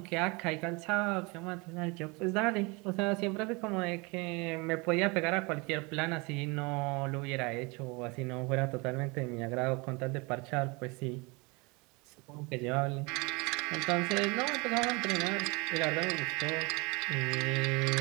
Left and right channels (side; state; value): left; quieter; 27.5 dB